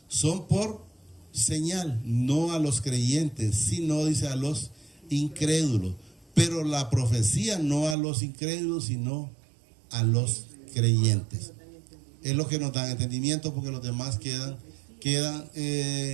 son por señal, no a los creyentes, sino, dice, a los incrédulos. Pero la profecía no a los incrédulos, sino a los creyentes. Es lo que nos da entendimiento, porque los demás quedan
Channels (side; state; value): left; drops out; at 8.0 s